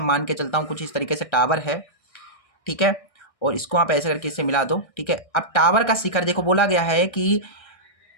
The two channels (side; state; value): right; late; 1.6 ms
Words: मान के चलता हूँ कुछ इस तरीके से टावर है। ठीक है, और इसको आप ऐसे करके इससे मिला दो। ठीक है, अब टावर का शिखर देखो, बोला गया है कि